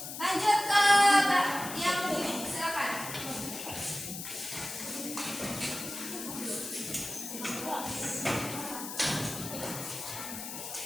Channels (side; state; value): left; noise; hiss, 8 dB below the sound